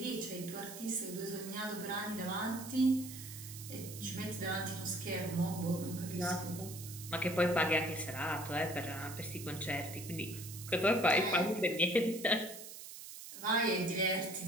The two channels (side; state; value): right; noise; hiss, 12 dB below the sound